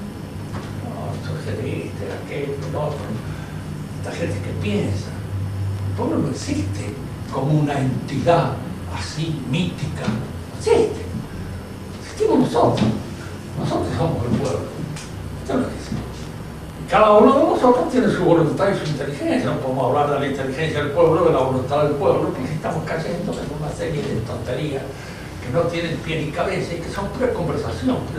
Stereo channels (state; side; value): identical; both; correlation 1.00